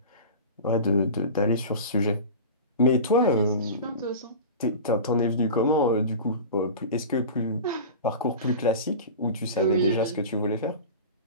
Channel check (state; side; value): inverted; both; correlation -0.32